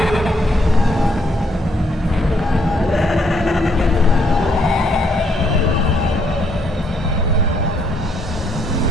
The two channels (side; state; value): both; normal; correlation 0.71